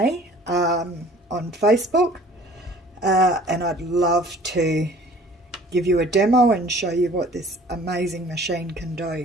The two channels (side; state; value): both; normal; correlation 0.50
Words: on Facebook. And I'd love to give you a demo and show you what this amazing machine can